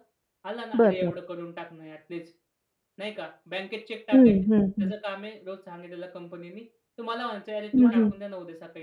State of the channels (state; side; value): identical; both; correlation 1.00